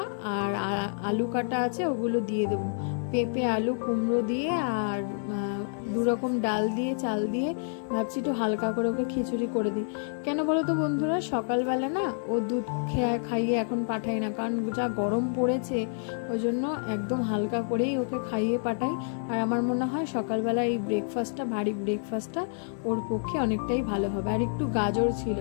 আর আলু কাটা আছে, ওগুলো দিয়ে দেব। পেঁপে, আলু, কুমড়ো দিয়ে আর দু রকম ডাল দিয়ে, চাল দিয়ে ভাবছি একটু হালকা করে ওকে খিচুড়ি করে দিই। কেন বলো তো বন্ধুরা, সকালবেলা না ও দুধ খাইয়ে এখন পাঠাই না, কারণ যা গরম পড়েছে, ওই জন্য একদম হালকা করেই ওকে খাইয়ে পাঠাই। আর আমার মনে হয় সকালবেলা এই ব্রেকফাস্টটা, ভারী ব্রেকফাস্টটা ওর পক্ষে অনেকটাই ভালো হবে। আর একটু গাজর ছিল,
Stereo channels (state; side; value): silent; right; 59 dB below the other